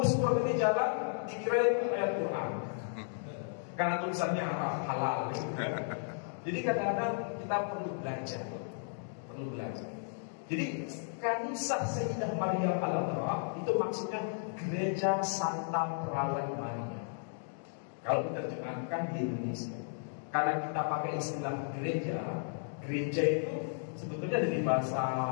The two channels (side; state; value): right; silent; digital silence